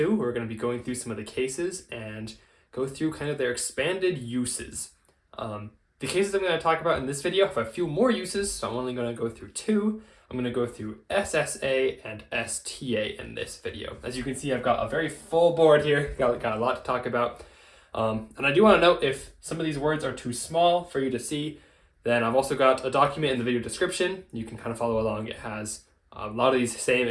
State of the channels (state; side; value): identical; both; correlation 1.00